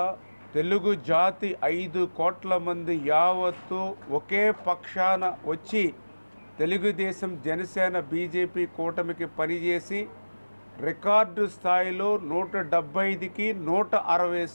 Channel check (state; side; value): inverted; both; correlation -1.00